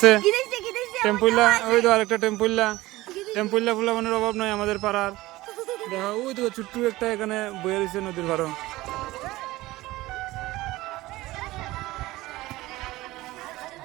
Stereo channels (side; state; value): left; quieter; 18.5 dB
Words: টেম্পুইলা ওই তো আরেকটা টেম্পুইলা। টেম্পুইলা ফুলা মানে অভাব নয় আমাদের পাড়ার। দেখো ওই তো ছোট্ট একটা এখানে বয়ে রয়েছে নদীর ভাড়া।